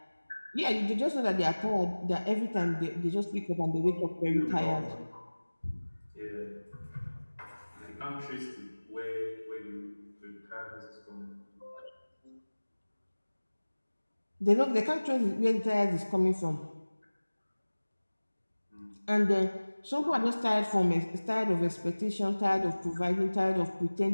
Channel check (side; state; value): both; inverted; correlation -1.00